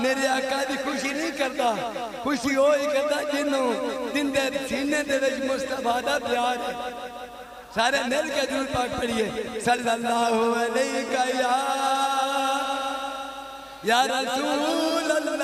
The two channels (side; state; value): both; identical; correlation 1.00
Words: آقا دی خوشی نہیں کرتا، خوشی ہوئی کرتا جنہوں دن دے سینے دے وچ مصطفیٰ دا پیار ہے۔ سارے مل کے درود پاک پڑھیے صلی اللہ علیہ یا رسول